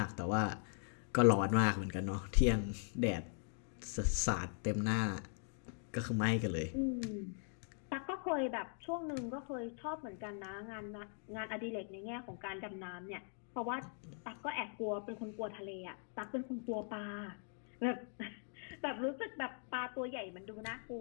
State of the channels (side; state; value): right; silent; 51 dB below the other